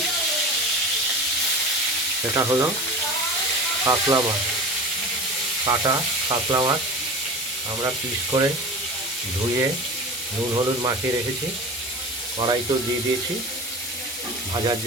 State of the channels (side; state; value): both; normal; correlation 0.33